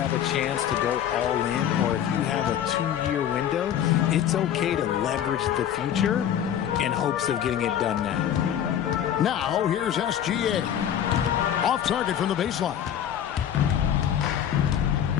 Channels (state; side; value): quieter; right; 9.9 dB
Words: a chance to go all in, or if you have a 2-year window, it's okay to leverage the future in hopes of getting it done now. Now, here's SGA. Off target from the baseline.